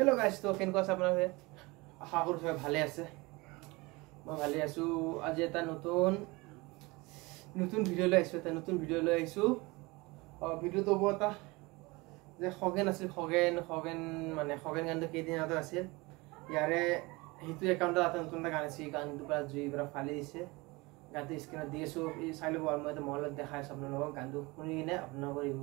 तो কেনেকুৱা আছে আপোনালোকে আশা কৰো সবাই ভালে আছে মই ভালে আছো আজি এটা নতুন ভিডিও লৈ আহিছো ভিডিওটো বটা যে খগেন আছিল খগেন মানে খগেন গানটো কেইদিন আগতে আছিল ইয়াৰে হিটো একাউন্টত এটা নতুন গান আছে গানটো পুৰা জুই পুৰা ফালি দিছে গানটো স্ক্ৰিনত দি আছো এই চাই লব আৰু মই এটা মলত দেখাই আছো আপোনালোকক গানটো শুনি কিনে আপোনালোকৰ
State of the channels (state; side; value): quieter; left; 24.1 dB